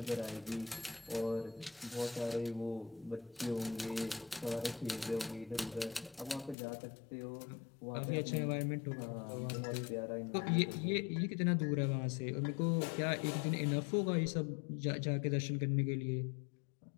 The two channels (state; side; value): drops out; right; at 6.6 s